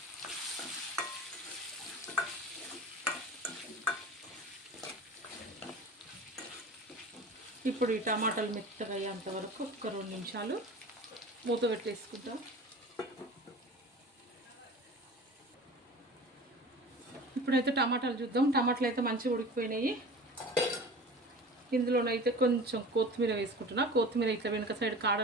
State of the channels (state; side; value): normal; both; correlation 0.38